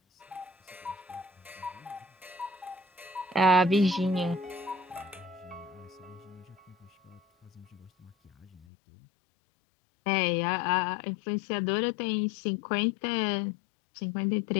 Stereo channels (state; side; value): drops out; right; at 8.7 s